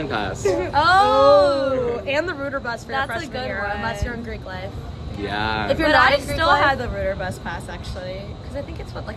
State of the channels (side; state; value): both; identical; correlation 1.00